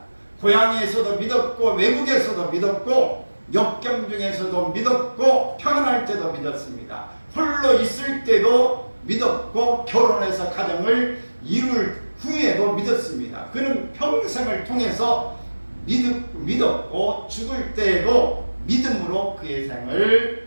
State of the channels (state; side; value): inverted; both; correlation -1.00